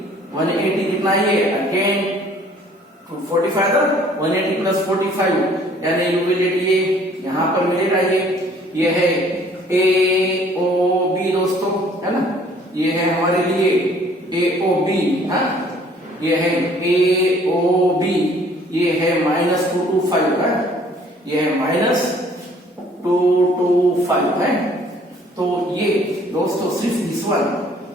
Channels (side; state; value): both; normal; correlation 0.57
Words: कितना ये अगेन 45 था, 180 + 45 यानी यू विल गेट ये यहां पर मिलेगा ये है AOB दोस्तों, है ना। ये है हमारे लिए AOB, हाँ ये है AOB, ये है -2 to 5 है, ये है -2 to 5 है। तो ये दोस्तों सिर्फ दिस वन